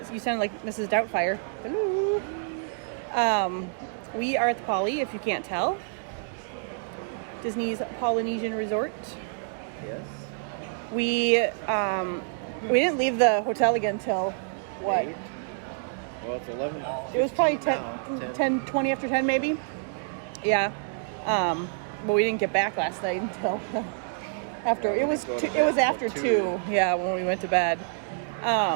you sound like Mrs. Doubtfire. Hello. We are at the Poly, if you can't tell. Disney's Polynesian Resort. Yes. We didn't leave the hotel again till what? 8? Well, it's 11. It was probably 10, 20 after 10 maybe. Yeah. But we didn't get back last night until after it was after 2. Yeah, when we went to bed.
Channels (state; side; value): silent; left; digital silence